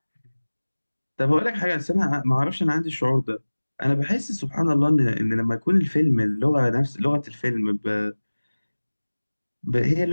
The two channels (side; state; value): both; inverted; correlation -1.00